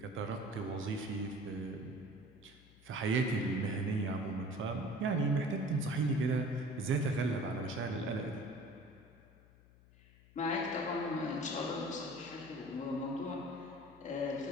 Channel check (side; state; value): left; noise; hum, 24 dB below the sound